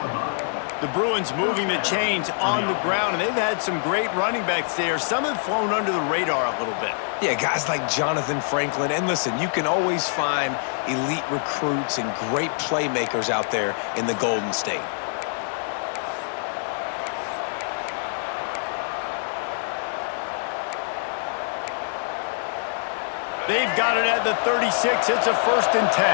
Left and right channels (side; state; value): right; silent; digital silence